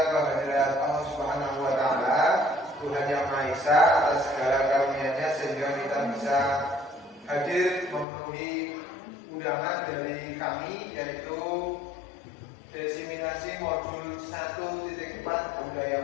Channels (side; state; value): right; drops out; at 8.1 s